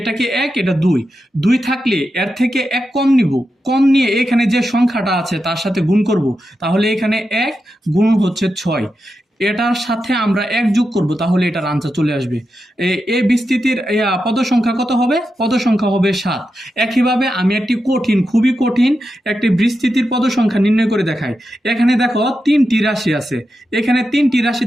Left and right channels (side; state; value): both; normal; correlation 0.88